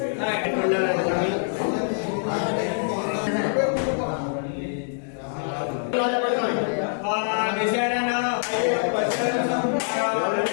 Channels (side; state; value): right; silent; digital silence